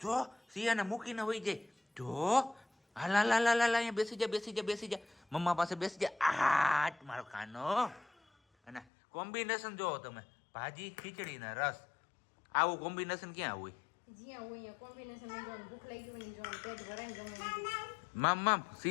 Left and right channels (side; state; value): right; drops out; at 8.8 s